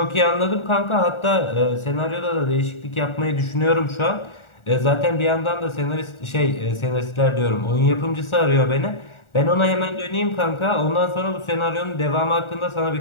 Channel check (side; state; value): right; late; 1.4 ms